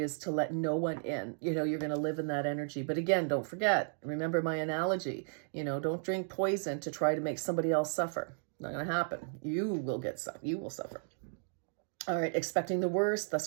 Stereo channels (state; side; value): silent; left; 55 dB below the other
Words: to let no one in. You're going to live in that energy. But again, don't forget, remember my analogy, don't drink poison to try to make somebody else suffer. Not going to happen. You will suffer. All right. Expecting the worst, thus